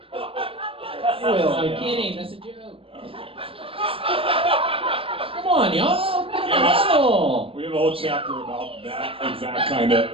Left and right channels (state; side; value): late; left; 0.27 ms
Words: I'm kidding. That's a joke. Come on, y'all. We have a whole chapter about that exact kind